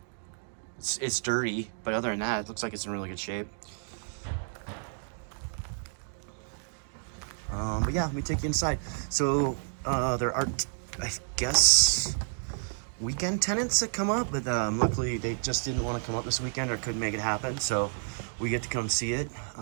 It's dirty, but other than that, it looks like it's in really good shape. But yeah, let me take you inside. So there are, I guess, weekend tenants that come up, but luckily they just didn't want to come up this weekend or couldn't make it happen, so we get to come see it.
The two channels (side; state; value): left; silent; digital silence